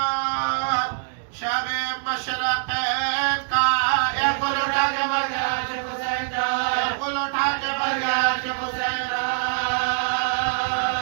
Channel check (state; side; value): silent; left; digital silence